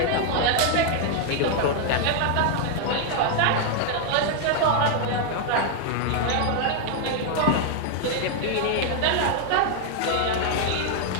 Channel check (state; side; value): different; both; correlation 0.00